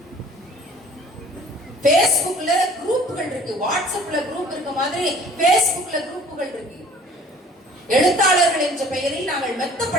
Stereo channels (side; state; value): both; normal; correlation 0.51